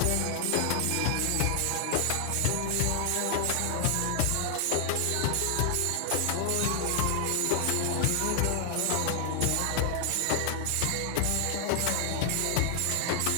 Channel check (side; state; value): both; different; correlation 0.00